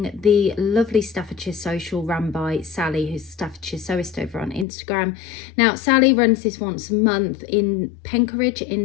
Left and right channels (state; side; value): drops out; right; at 4.7 s